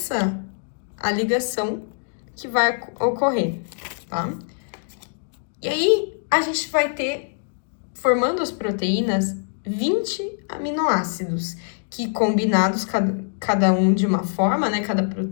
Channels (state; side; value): silent; right; digital silence